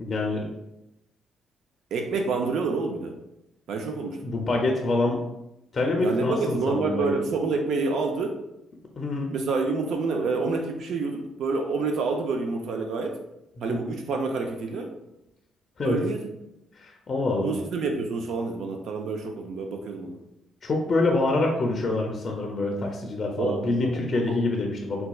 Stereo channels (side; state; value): both; normal; correlation 0.69